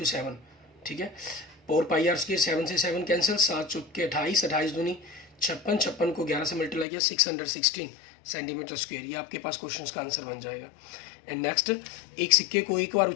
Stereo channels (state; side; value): drops out; right; at 6.9 s